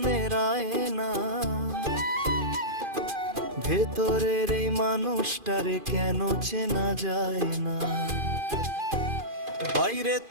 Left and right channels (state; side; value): late; left; 2.5 ms